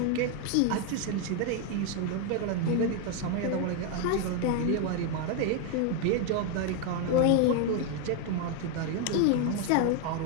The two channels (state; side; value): different; both; correlation 0.01